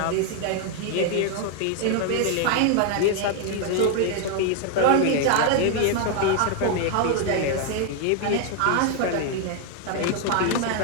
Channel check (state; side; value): different; both; correlation 0.01